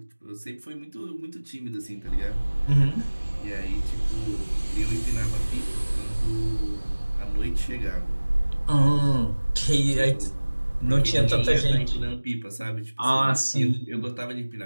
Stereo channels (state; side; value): inverted; both; correlation -1.00